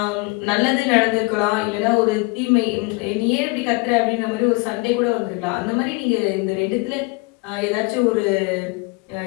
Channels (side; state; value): right; quieter; 27.0 dB